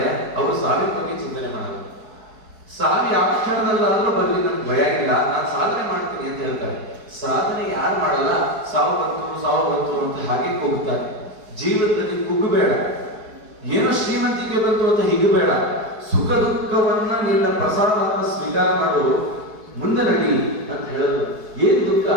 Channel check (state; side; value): late; left; 4.7 ms